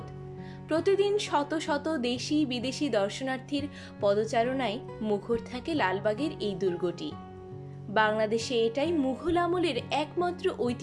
প্রতিদিন শত শত দেশি বিদেশি দর্শনার্থীর পদচারণায় মুখর থাকে লালবাগের এই দুর্গটি। বাংলাদেশে এটাই মুঘল আমলের একমাত্র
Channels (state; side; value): identical; both; correlation 1.00